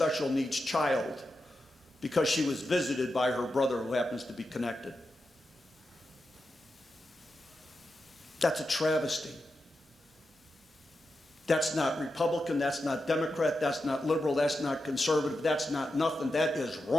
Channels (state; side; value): normal; both; correlation 0.89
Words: needs child because she was visited by her brother who happens to be connected. That's a travesty. That's not Republican, that's not Democrat, that's not liberal, that's not conservative, that's not nothing. That is